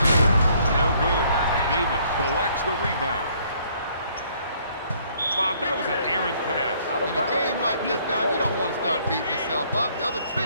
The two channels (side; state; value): both; inverted; correlation -0.63